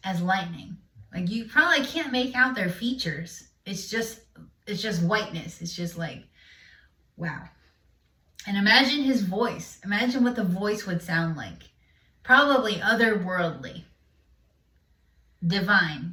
as lightning. Like, you probably can't make out their features. It's just whiteness. It's just like, wow. And imagine his voice. Imagine what the voice would sound like. Probably otherworldly.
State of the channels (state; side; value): identical; both; correlation 1.00